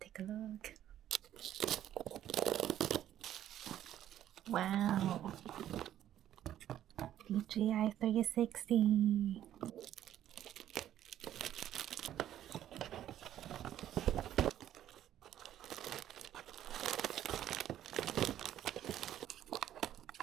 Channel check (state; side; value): quieter; left; 11.7 dB